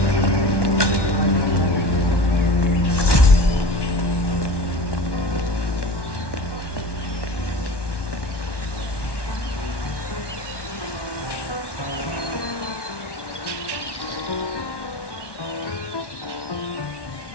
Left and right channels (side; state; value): right; late; 1.1 ms